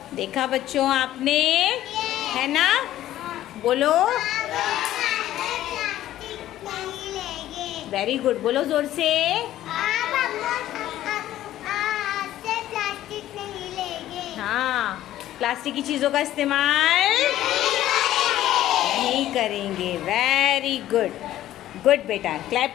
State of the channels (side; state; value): right; quieter; 13.4 dB